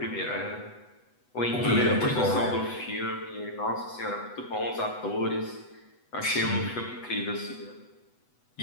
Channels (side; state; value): right; late; 8.1 ms